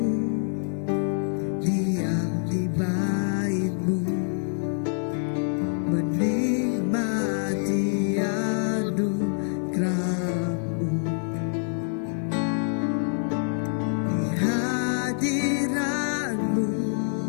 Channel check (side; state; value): right; silent; 60 dB below the other